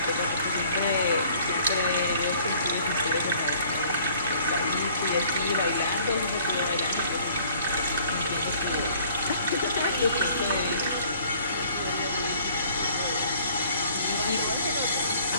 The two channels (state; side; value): inverted; both; correlation -0.56